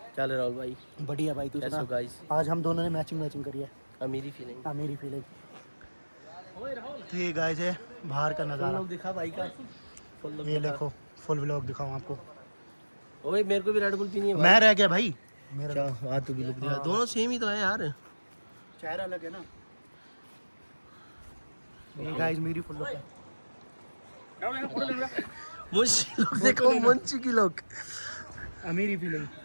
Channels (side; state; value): both; inverted; correlation -1.00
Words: चल राहुल भाई। बढ़िया भाई, तू सुना? गाइस, आज हम दोनों ने मैचिंग करी है। मेरी फीलिंग। मेरी फीलिंग। तो ये गाइस है बाहर का नज़ारा। दिखा भाई का। ये देखो फुल व्लॉग दिखाऊं आपको। ओए मेरे को भी रेड बुल पीनी है। मैं रह गया भाई मेरा। अच्छा, हाँ तू भी लुक दिखा। हाँ। दोनों सेम ही तो है यार। चेहरा अलग है ना। ये गाइस मेरी फुल लुक है। मुंशी लोग देखो, मुंशी की लोग। मेरी फीलिंग।